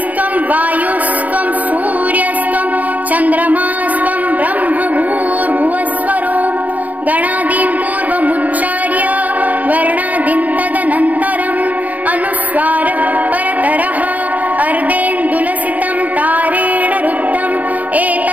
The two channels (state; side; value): late; left; 0.075 ms